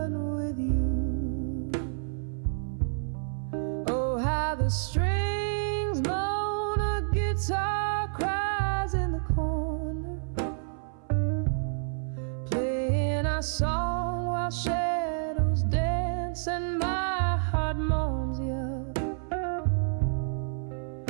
with you. Oh, how strings moan, a guitar cries in the corner, playing our song while shadows dance and my heart moans you.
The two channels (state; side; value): silent; left; 56 dB below the other